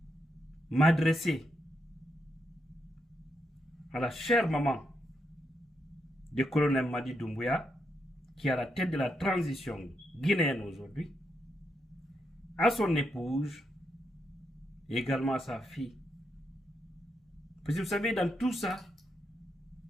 m'adresser à la chère maman du colonel Mamadi Doumbouya, qui est à la tête de la transition guinéenne aujourd'hui, à son épouse et également à sa fille. Parce que vous savez, dans tout ça,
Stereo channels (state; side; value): normal; both; correlation 0.81